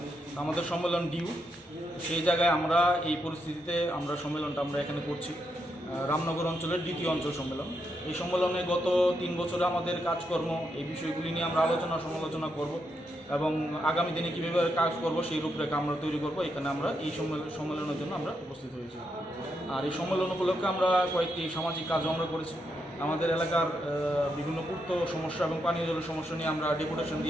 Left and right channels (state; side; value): normal; both; correlation 0.81